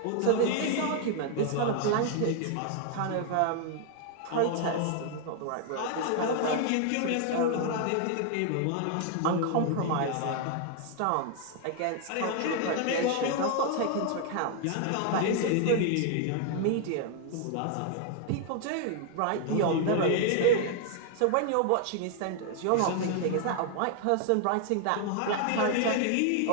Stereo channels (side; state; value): both; different; correlation 0.00